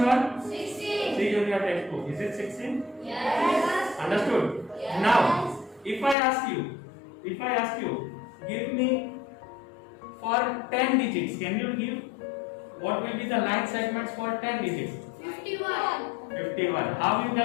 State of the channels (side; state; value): right; drops out; at 6.2 s